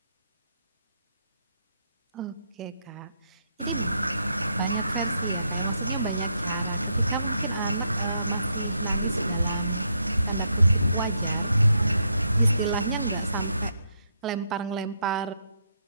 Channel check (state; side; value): inverted; both; correlation -0.78